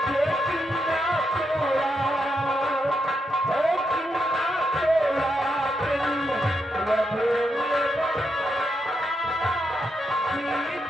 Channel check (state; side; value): normal; both; correlation 0.82